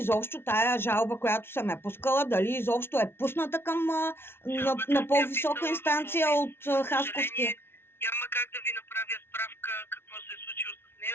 тая жалба, която съм я пускала, дали изобщо е пусната към на по-висока инстанция от Хасковския. Няма как да ви направя справка какво се е случило с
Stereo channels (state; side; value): late; right; 0.11 ms